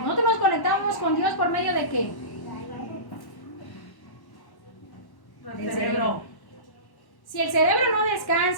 nos conectamos con Dios por medio de ¿qué? El cerebro. Si el cerebro no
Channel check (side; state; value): right; late; 1.1 ms